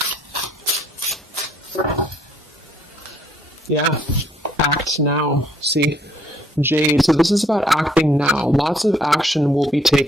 Yeah, act now. See, Jade. So this is about acting now. Lots of action will be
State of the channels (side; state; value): both; normal; correlation 0.65